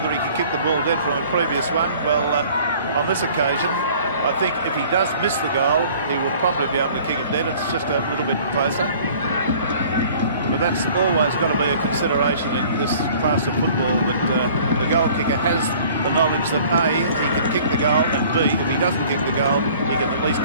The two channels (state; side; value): inverted; both; correlation -0.51